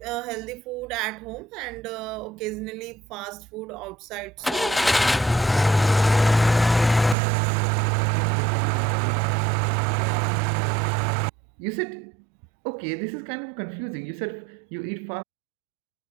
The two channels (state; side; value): drops out; left; at 7.2 s